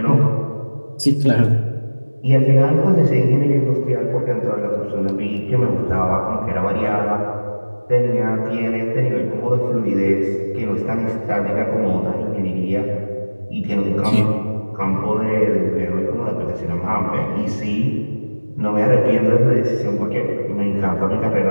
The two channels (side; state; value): both; inverted; correlation -1.00